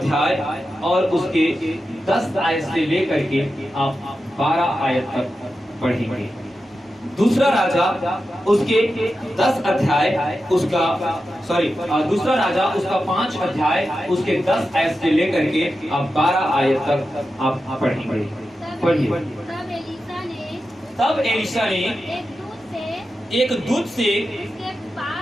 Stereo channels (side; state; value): both; normal; correlation 0.91